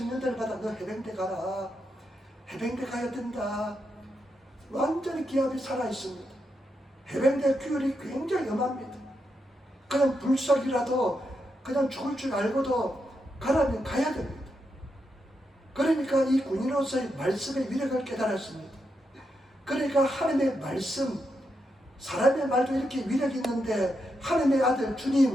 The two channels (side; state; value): both; normal; correlation 0.84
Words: 너 해병대 가라. 해병대 가야 된다. 완전히 기압이 살아있습니다. 해병대 규율이 굉장히 엄합니다. 그냥 불살이라도 그냥 죽을 줄 알고도 가라면 가야 됩니다. 그러니까 이 군인으로서의 말씀의 위력을 깨달았습니다. 그러니까 하나님의 말씀, 사람의 말도 이렇게 위력이 있는데 하나님의 아들